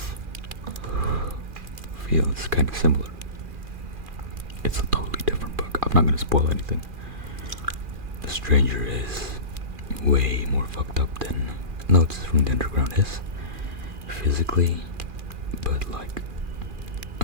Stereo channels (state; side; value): late; left; 2.4 ms